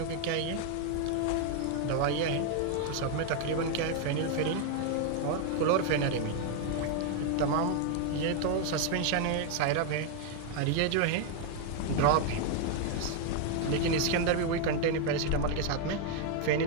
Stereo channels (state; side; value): different; both; correlation 0.00